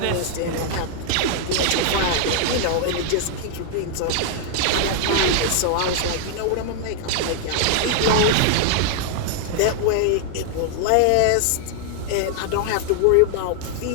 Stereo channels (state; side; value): different; both; correlation 0.00